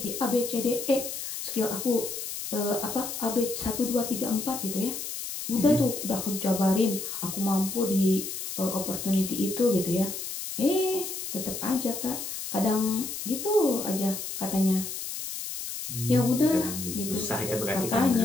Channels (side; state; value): left; noise; hiss, 6 dB below the sound